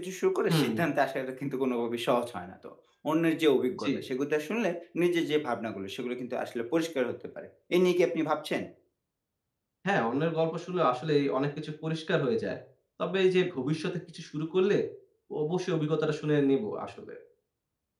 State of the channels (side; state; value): both; identical; correlation 1.00